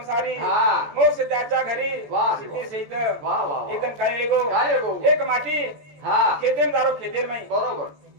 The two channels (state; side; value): late; left; 14 ms